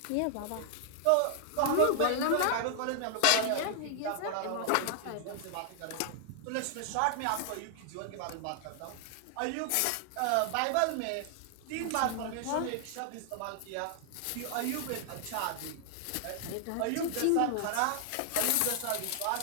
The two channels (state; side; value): different; both; correlation 0.00